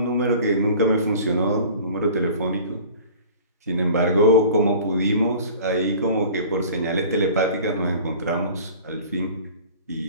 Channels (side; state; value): both; inverted; correlation -0.44